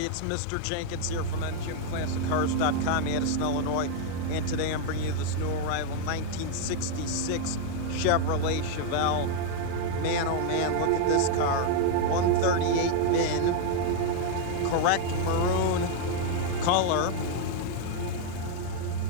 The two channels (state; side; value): different; both; correlation 0.00